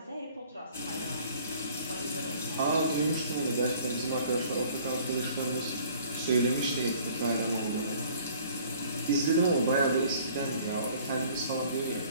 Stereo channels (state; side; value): inverted; both; correlation -0.54